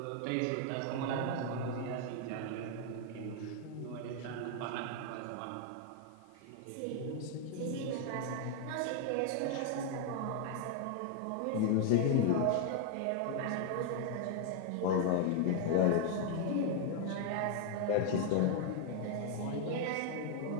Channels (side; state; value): both; different; correlation 0.00